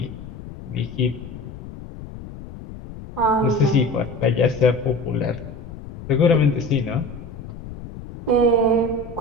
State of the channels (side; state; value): left; noise; rumble, 13 dB below the sound